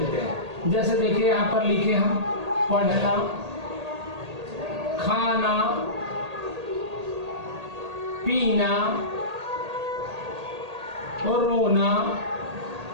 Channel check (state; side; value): late; left; 1.8 ms